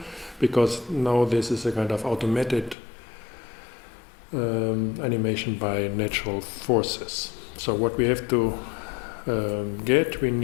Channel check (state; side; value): drops out; right; at 2.8 s